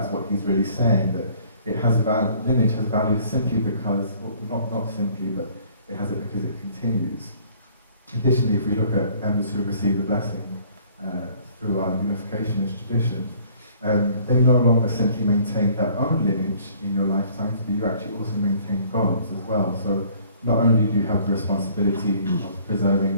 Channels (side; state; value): both; inverted; correlation -0.56